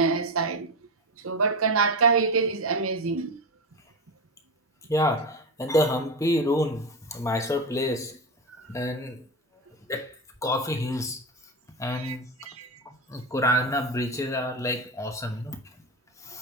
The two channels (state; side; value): normal; both; correlation 0.19